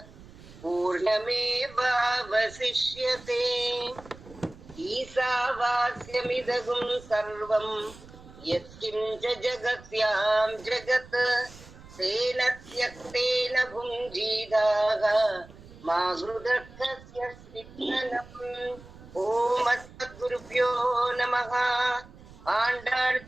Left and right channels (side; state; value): right; noise; rumble, 20 dB below the sound